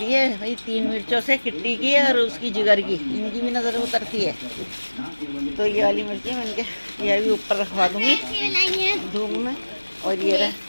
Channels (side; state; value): both; inverted; correlation -1.00